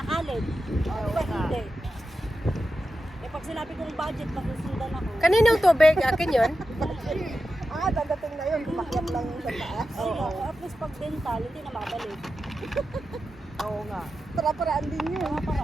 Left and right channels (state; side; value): normal; both; correlation 0.91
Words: college? Diba hindi? Eh pag sinabi kong budget, masusundan ako. Kaninang tubig? Akin yun? Dadating na yun. Kumakyat lang yung sa taas. Oo. At least pag dental, hindi na mabalik. Oo nga. Para-paraan din yun. Mga